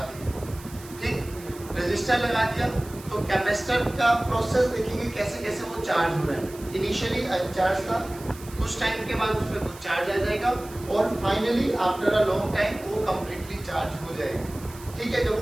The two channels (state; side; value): noise; right; hiss, 19 dB below the sound